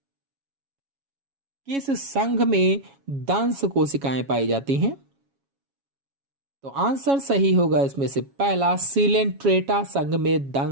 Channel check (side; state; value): left; late; 7.2 ms